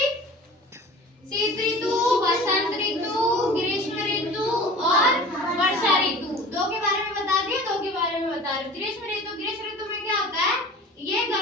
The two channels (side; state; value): both; normal; correlation 0.41